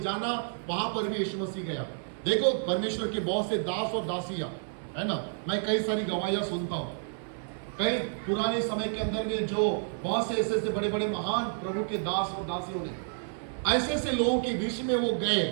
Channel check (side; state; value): left; silent; 58 dB below the other